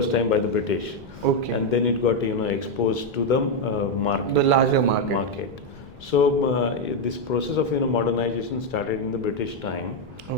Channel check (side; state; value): left; noise; rumble, 21 dB below the sound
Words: time by the British. And then it got exposed to the market, the larger market. So this process of modernization started in the British time.